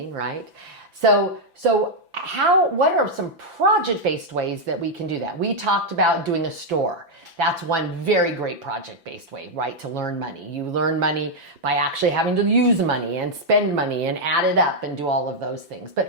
right? So what are some project-based ways that we can do that? We talked about doing a store. That's one very great project-based way, right, to learn money. You learn money by actually having to use money and spend money and add it up and do all of those things.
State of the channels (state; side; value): late; left; 5.9 ms